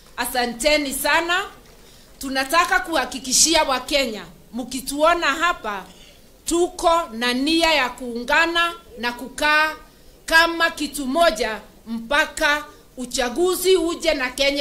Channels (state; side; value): identical; both; correlation 1.00